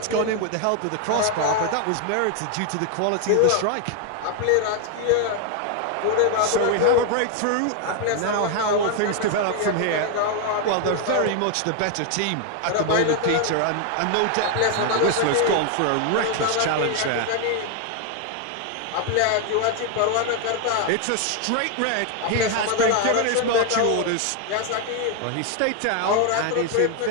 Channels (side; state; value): both; different; correlation 0.00